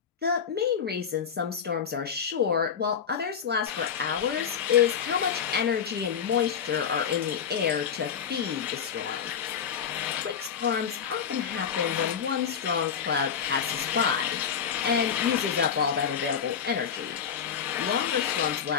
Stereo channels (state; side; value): quieter; right; 7.5 dB